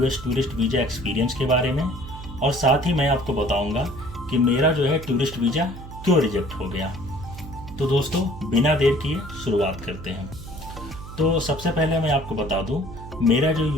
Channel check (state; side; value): noise; right; hum, 13 dB below the sound